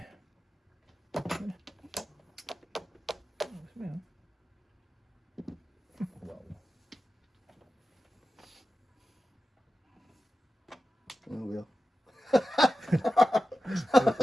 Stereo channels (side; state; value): both; normal; correlation 0.93